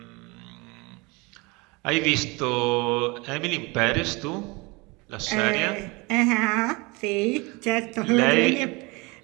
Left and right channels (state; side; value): quieter; left; 26.3 dB